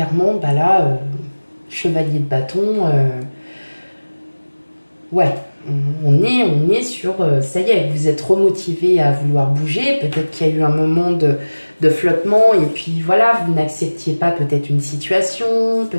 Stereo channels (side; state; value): both; inverted; correlation -1.00